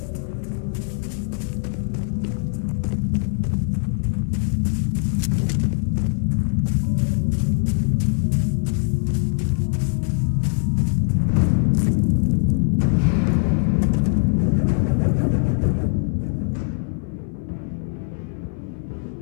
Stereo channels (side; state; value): right; silent; 59 dB below the other